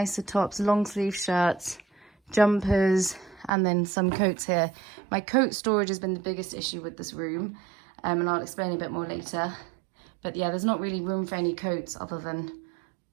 tops, long sleeve shirts, jumpers, and then some coats here. My coat storage has been the biggest issue with this room, and I'll explain a bit more later. But yeah, there's not really room for any coats other than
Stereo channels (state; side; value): drops out; left; at 3.5 s